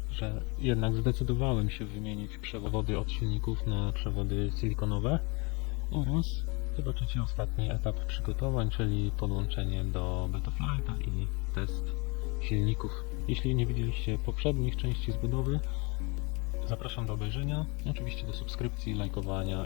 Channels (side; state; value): right; quieter; 29.2 dB